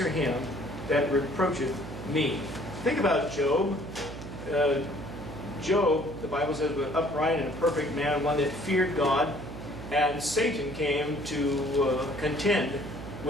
him that reproacheth me. Think about Job. Job, the Bible says, was upright and a perfect man, one that feared God, and Satan came to contend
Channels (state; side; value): noise; right; hum, 10 dB below the sound